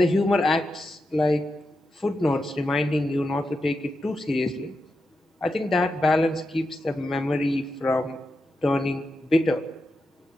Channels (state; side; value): normal; both; correlation 0.88